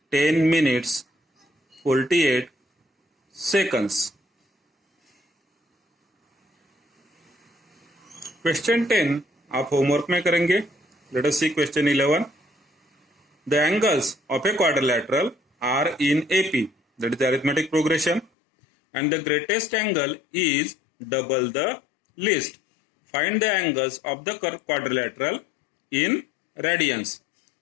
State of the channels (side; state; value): right; drops out; at 18.3 s